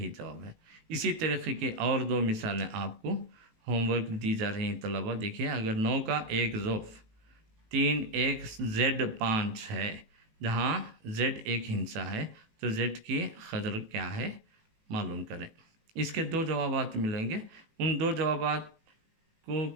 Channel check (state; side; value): late; left; 18 ms